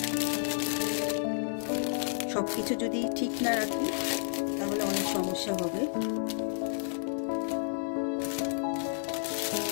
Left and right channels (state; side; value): silent; right; digital silence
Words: সব কিছু যদি ঠিক না রাখি তাহলে অনেক সমস্যা হবে।